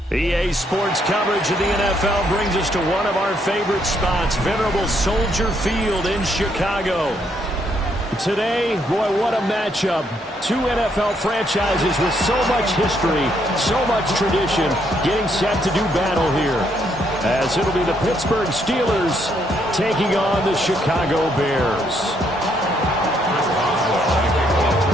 EA Sports coverage of the NFL brings us to one of our favorite spots, venerable Soldier Field in Chicago. Today, boy, what a matchup. Two NFL franchises with so much history, so much tradition, getting set to do battle here. As it'll be the Pittsburgh Steelers taking on the Chicago Bears.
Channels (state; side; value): normal; both; correlation 0.73